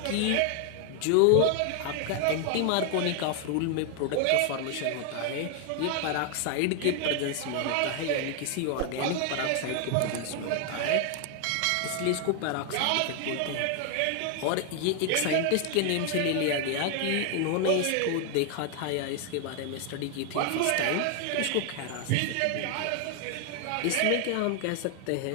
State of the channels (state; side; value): different; both; correlation 0.00